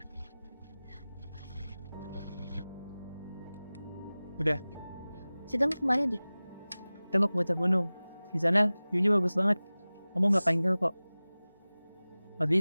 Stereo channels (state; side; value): inverted; both; correlation -0.98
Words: Udah, kita mau kemana deh? kita mau ke puncak gunung. Di sana view-nya bagus banget. Kamu nggak pengen kok.